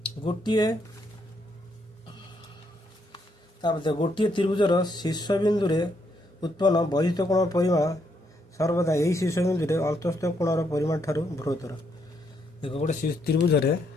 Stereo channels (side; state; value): both; normal; correlation 0.75